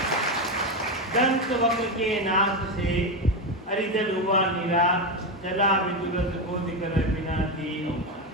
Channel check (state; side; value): normal; both; correlation 0.12